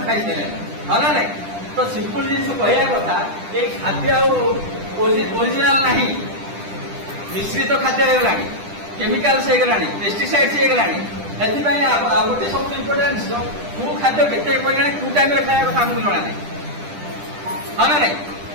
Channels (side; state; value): left; late; 10 ms